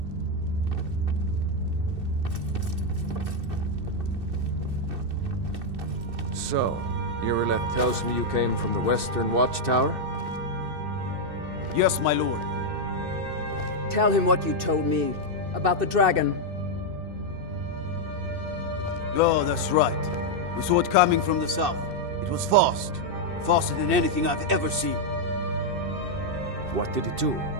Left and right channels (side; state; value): left; late; 2.6 ms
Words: So, Irileth tells me you came from the Western Watchtower? Yes, my lord. Tell him what you told me about the dragon. Oh, that's right. We saw it coming from the south. It was fast. Faster than anything I've ever seen. What did it do?